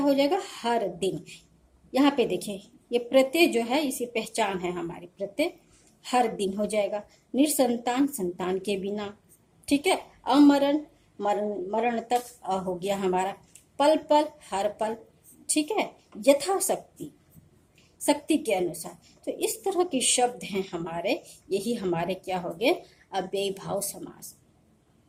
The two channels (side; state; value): both; identical; correlation 1.00